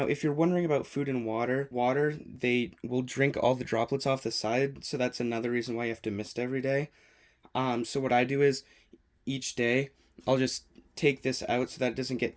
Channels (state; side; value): identical; both; correlation 1.00